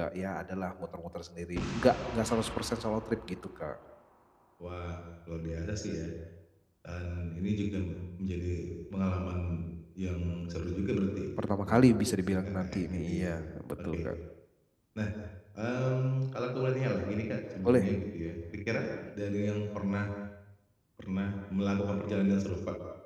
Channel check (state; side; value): identical; both; correlation 1.00